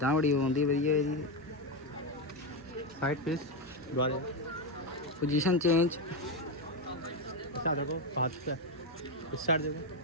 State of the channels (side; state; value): both; normal; correlation 0.10